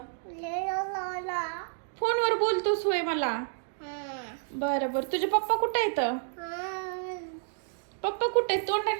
फोनवर बोलतोस होय मला? बरं बरं, तुझे पप्पा कुठे आहेत? पप्पा कुठे आहेत?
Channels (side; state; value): left; silent; digital silence